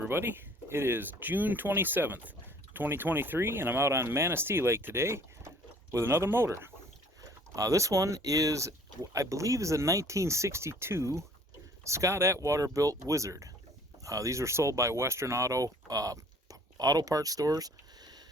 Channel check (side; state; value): both; normal; correlation 0.54